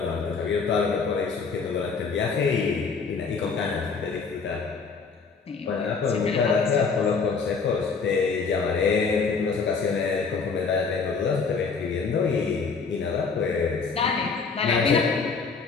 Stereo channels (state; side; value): quieter; right; 5.0 dB